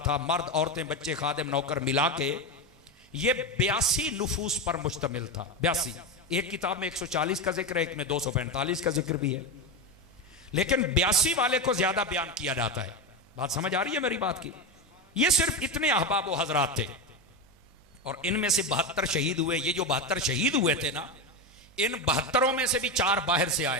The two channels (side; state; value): both; normal; correlation 0.15